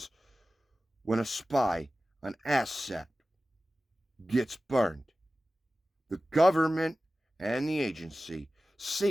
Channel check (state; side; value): normal; both; correlation 0.96